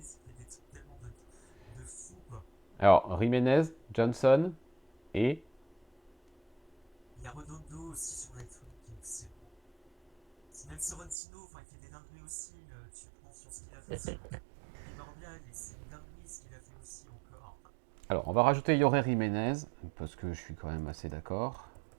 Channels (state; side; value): drops out; left; at 11.2 s